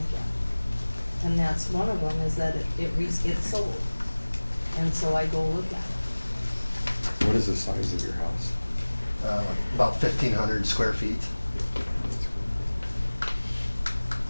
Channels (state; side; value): inverted; both; correlation -1.00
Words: And that's one of them, is that it sold. And so I go look at it. What is the size of your house? About 1,500 square feet.